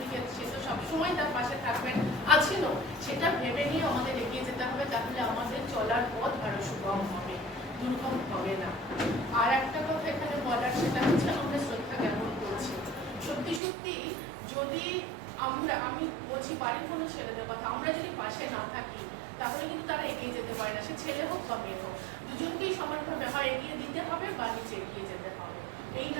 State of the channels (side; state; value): left; drops out; at 13.6 s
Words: সে তো সবসময় তার পাশে থাকবেন, আছেনও, সেটা ভেবে নিয়ে আমাদের এগিয়ে যেতে হবে, তাহলে আমাদের চলার পথ আরো সুগম হবে, দুর্গম হবে না। আর একটা কথা এখানে বলার, সেটা হচ্ছে আমরা শ্রদ্ধা জ্ঞাপন করছি। সত্যি সত্যি যদি আমি বলছি বাড়ির কোনো ছেলেদের কথা, আমরা যদি পাশে না থাকি তাহলে কিন্তু তারা এগিয়ে যেতে পারে না, সে ছেলে হোক বা মেয়ে হোক, দুজনকেই সমানভাবে হয় এগিয়ে দিতে হবে বা নিচে এগিয়ে যেতে হবে। এই